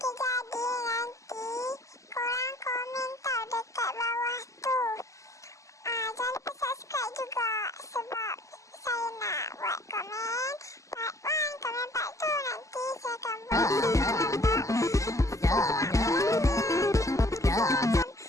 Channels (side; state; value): right; late; 0.16 ms